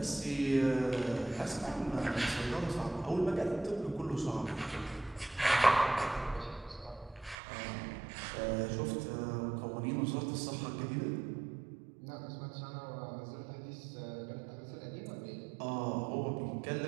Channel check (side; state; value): left; drops out; at 7.4 s